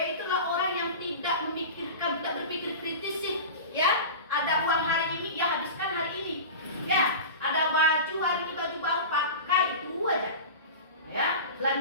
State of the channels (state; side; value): inverted; both; correlation -0.30